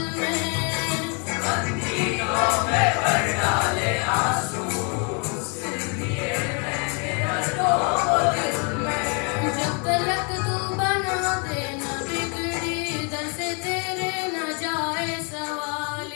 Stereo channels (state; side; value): quieter; right; 35.9 dB